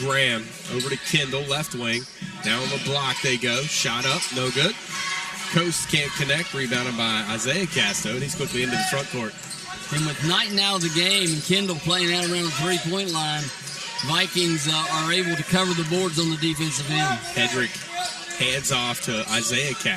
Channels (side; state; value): both; identical; correlation 1.00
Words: over to Kendall, left wing. Now on the block they go. Shot up, no good. Coast can't connect, rebounded by Isaiah Casto, and he's quickly into the front court. And with night now of the game and Kendall playing out around the three-point line, Vikings are able to cover the boards on the defensive end. Hedrick hands off to Isaiah